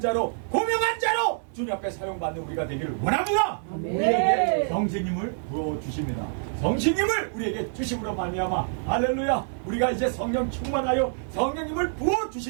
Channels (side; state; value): left; silent; 61 dB below the other